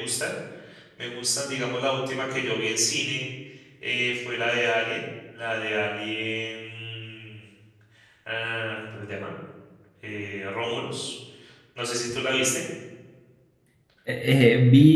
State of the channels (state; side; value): identical; both; correlation 1.00